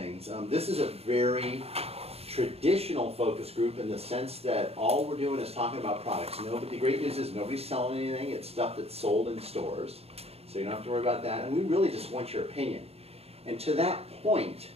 This is a very traditional focus group in the sense that all we're doing is talking about products. The great news is nobody's selling anything. It's stuff that's sold in stores, so you don't have to worry about that. And we really just want your opinion. And to that point,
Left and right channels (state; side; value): late; left; 0.29 ms